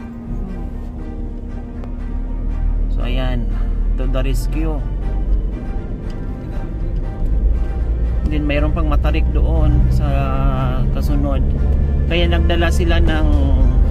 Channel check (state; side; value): identical; both; correlation 1.00